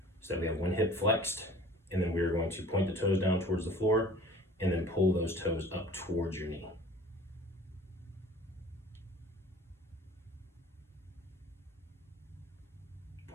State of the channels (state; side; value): normal; both; correlation 0.46